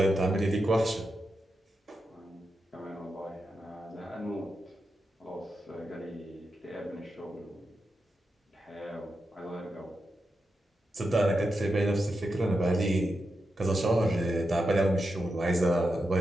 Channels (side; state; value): both; normal; correlation 0.88